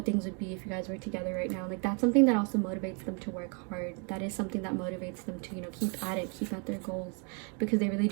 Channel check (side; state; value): left; quieter; 36.6 dB